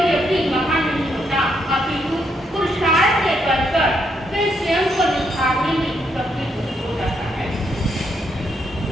व्यक्ति महान नहीं होता, अपितु पुरुषार्थ के बल पर वह स्वयं को निखारने में सफल हो जाता है।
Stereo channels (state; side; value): normal; both; correlation 0.76